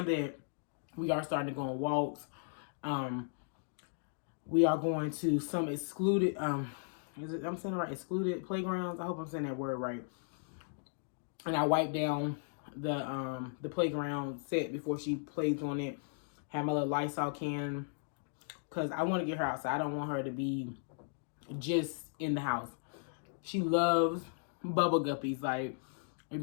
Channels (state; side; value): silent; right; digital silence